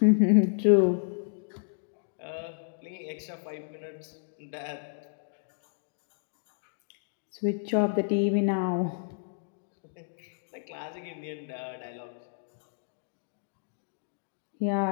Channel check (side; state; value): right; silent; digital silence